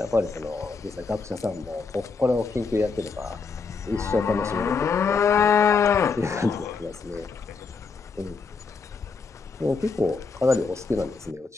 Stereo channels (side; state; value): right; quieter; 4.8 dB